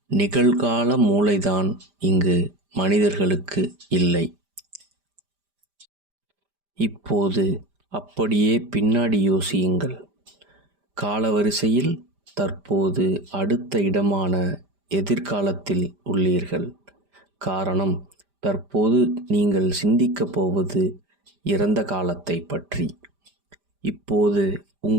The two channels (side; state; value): left; late; 5.0 ms